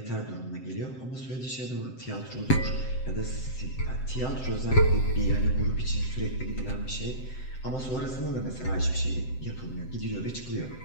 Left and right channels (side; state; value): right; late; 7.8 ms